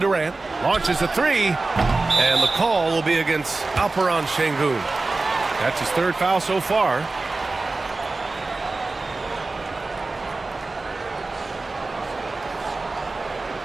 Launches a 3. And the call will be against Alperen Şengün. That's his third foul so far.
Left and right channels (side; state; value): left; quieter; 3.5 dB